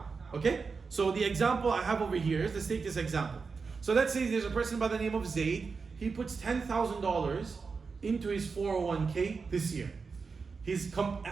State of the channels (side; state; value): left; quieter; 4.9 dB